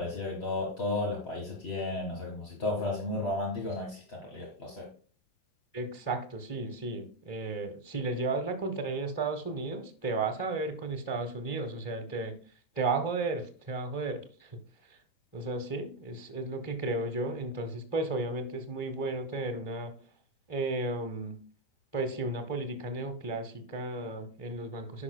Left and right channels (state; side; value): late; right; 3.1 ms